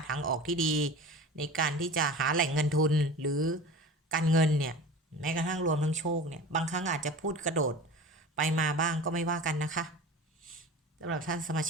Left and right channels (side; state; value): both; normal; correlation 0.35